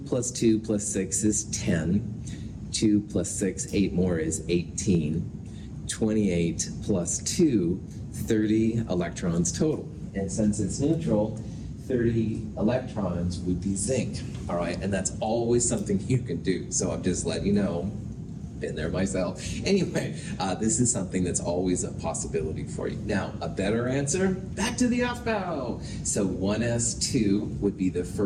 plus 2 plus 6 is 10. 2 plus 6, 8 more is 18. 28 plus 2, 30 electrons total. And since it's neutral, 30 electrons would be zinc, all right? And that's always something you can do. So I'm just letting you know, been there myself. Anyway, this is something that's always a possibility for you. Now, a better answer, back to the Aufbau. So 1s2 would be the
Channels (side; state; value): both; identical; correlation 1.00